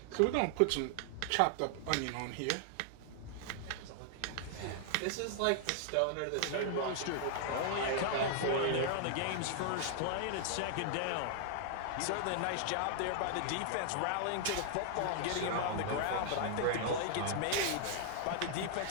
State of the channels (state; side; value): different; both; correlation 0.00